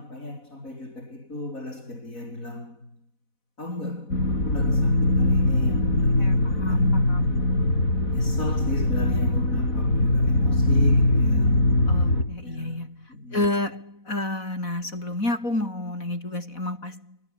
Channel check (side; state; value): right; late; 4.1 ms